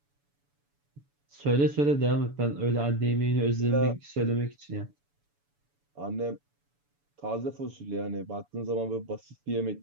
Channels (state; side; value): late; left; 7.0 ms